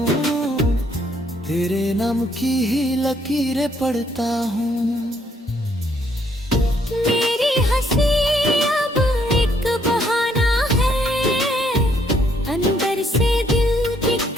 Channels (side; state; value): both; normal; correlation 0.69